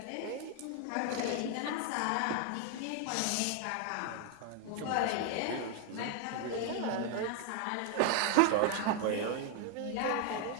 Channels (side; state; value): both; different; correlation 0.01